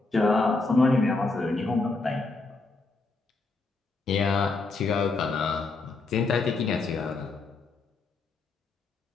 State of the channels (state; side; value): quieter; right; 3.7 dB